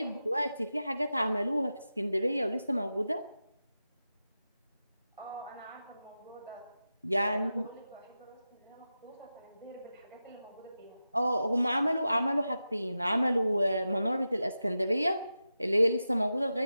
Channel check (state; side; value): inverted; both; correlation -0.92